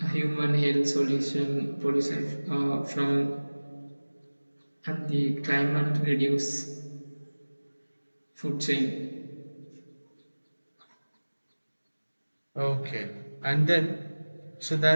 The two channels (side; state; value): both; inverted; correlation -1.00